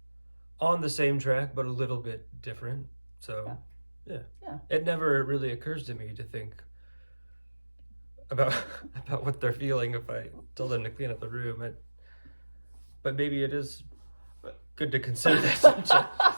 on the same track, but a little bit different. So, yeah. Yeah. It never really occurs to me to think about what they're feeling if I tell them to clean up the room. But maybe it is good to consider that.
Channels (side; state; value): both; inverted; correlation -1.00